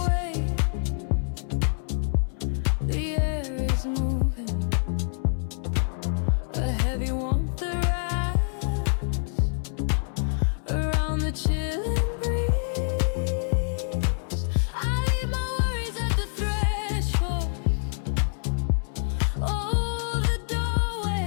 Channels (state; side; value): silent; right; 61 dB below the other